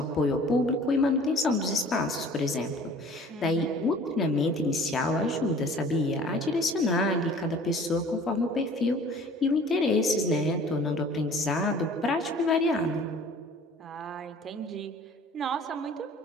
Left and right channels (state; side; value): normal; both; correlation 0.49